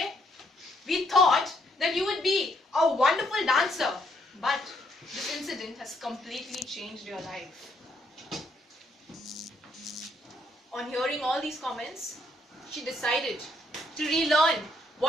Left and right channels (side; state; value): both; normal; correlation 0.72